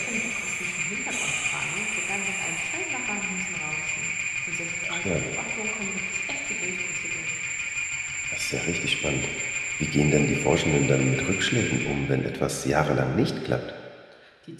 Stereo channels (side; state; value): both; identical; correlation 1.00